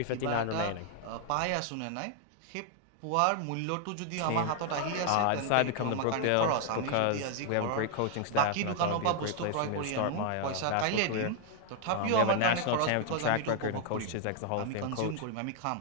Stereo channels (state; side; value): different; both; correlation 0.00